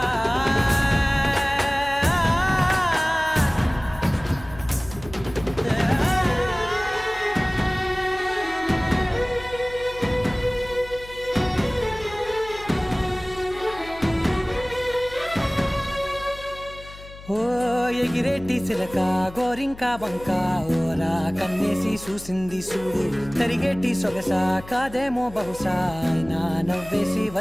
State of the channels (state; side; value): noise; left; hum, 17 dB below the sound